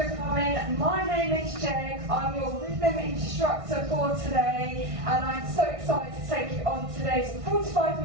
coming. My name is Jeg. I'm your rhythm instructor for today, and I'm so excited to take you on today's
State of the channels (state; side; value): late; left; 1.6 ms